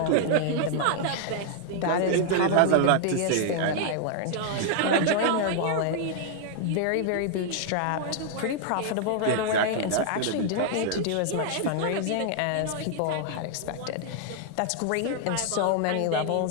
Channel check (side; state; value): both; different; correlation 0.00